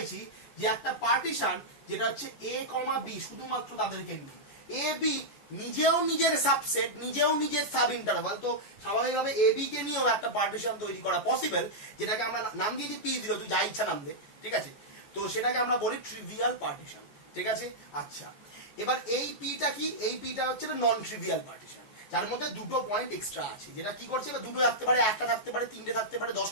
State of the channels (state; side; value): late; right; 14 ms